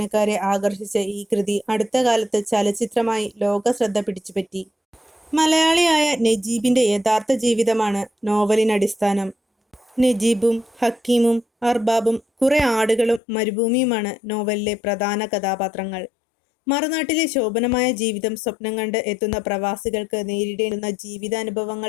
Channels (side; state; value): right; drops out; at 13.2 s